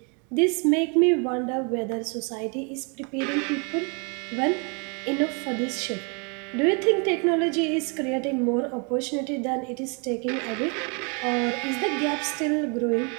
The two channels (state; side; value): quieter; left; 34.7 dB